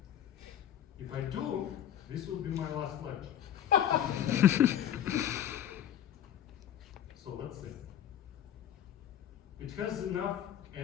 If I do, this will be my last lecture. So let's see. It has enough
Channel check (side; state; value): right; quieter; 10.4 dB